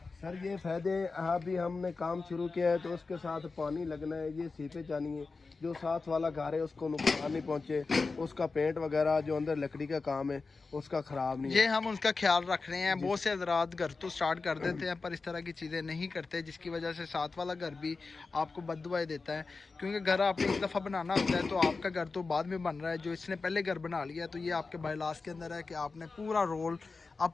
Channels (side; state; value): right; quieter; 4.1 dB